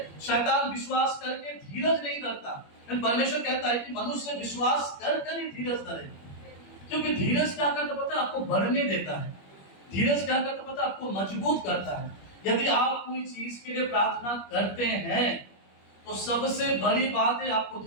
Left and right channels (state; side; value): late; right; 21 ms